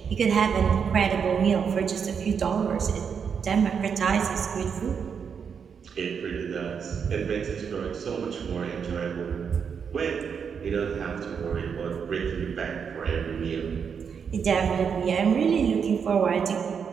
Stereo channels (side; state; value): left; quieter; 6.7 dB